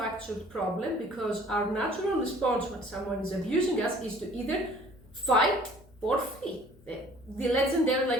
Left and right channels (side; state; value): both; normal; correlation 0.53